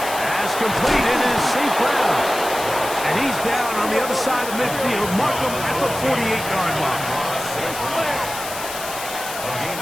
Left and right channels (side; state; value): left; noise; hiss, 9 dB below the sound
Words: completed is St. Brown. And he's down on the other side of midfield. Mark him at the 48-yard line. A gain